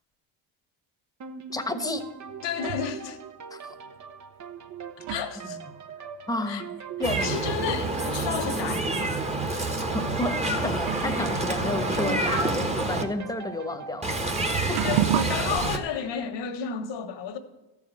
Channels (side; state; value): both; normal; correlation 0.22